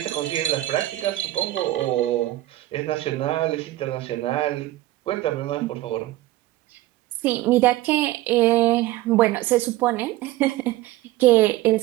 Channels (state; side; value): quieter; left; 16.4 dB